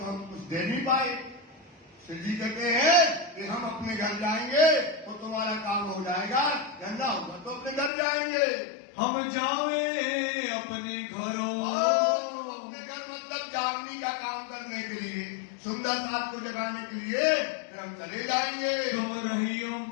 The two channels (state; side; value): drops out; right; at 7.9 s